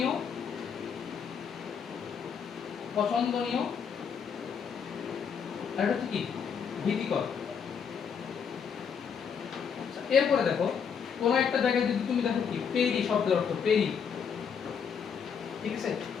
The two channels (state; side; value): quieter; right; 6.9 dB